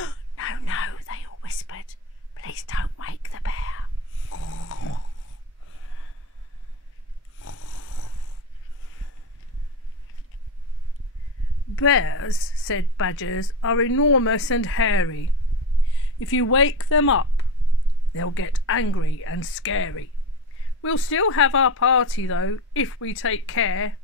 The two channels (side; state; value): both; normal; correlation 0.23